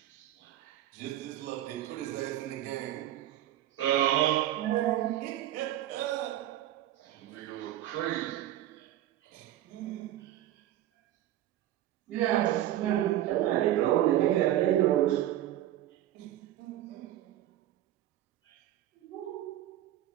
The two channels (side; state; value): left; quieter; 13.3 dB